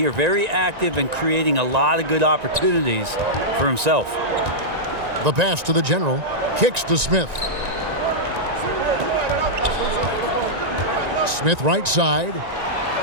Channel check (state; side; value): late; left; 1.9 ms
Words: Very active and creating a lot of good opportunities for himself. The pass to the general. Kicks to Smith. Smith right side.